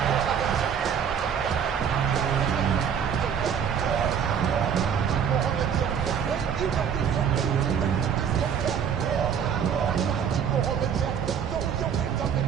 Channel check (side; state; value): left; quieter; 7.8 dB